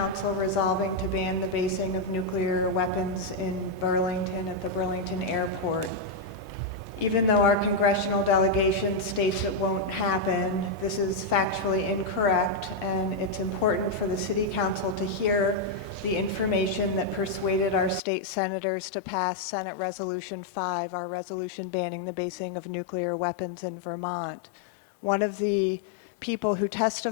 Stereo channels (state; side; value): drops out; right; at 18.0 s